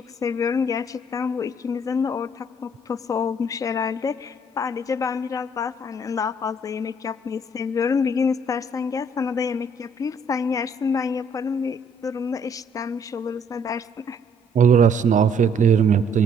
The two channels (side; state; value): both; normal; correlation 0.63